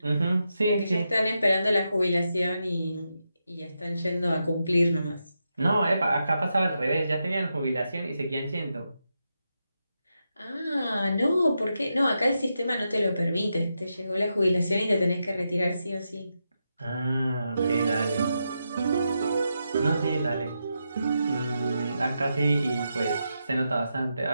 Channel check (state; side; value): inverted; both; correlation -0.86